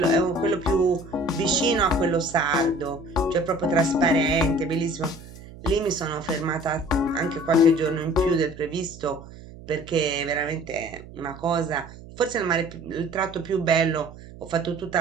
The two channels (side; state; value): right; noise; hum, 17 dB below the sound